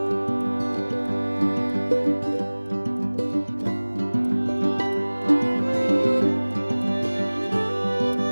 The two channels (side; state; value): both; inverted; correlation -1.00